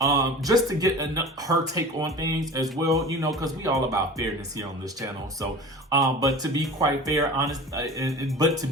Just to get her take on things as well, you know, because we all about fairness here on this channel. So, but to be quite honest,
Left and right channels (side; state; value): both; normal; correlation 0.37